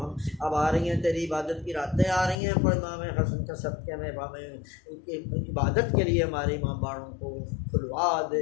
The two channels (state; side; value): drops out; right; at 2.4 s